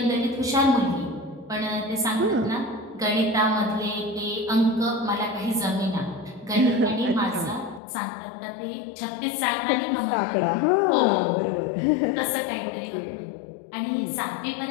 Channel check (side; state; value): right; drops out; at 7.8 s